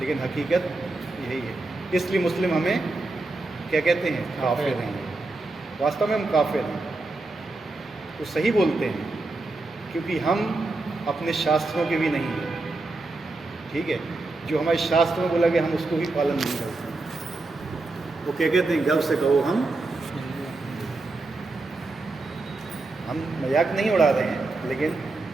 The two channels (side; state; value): left; quieter; 3.2 dB